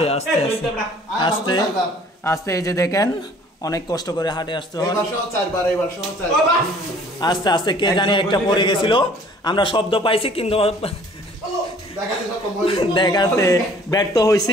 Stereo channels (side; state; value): both; normal; correlation 0.54